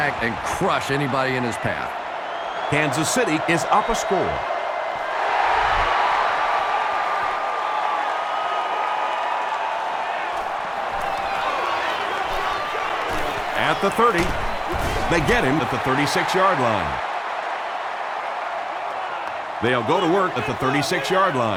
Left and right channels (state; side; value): identical; both; correlation 1.00